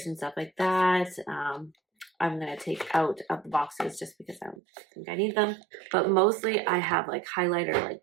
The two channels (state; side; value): drops out; left; at 4.5 s